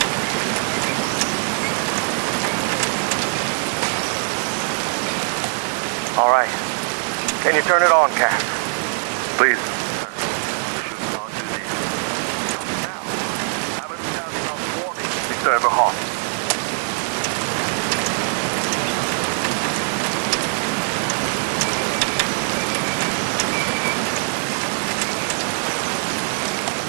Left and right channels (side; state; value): left; silent; digital silence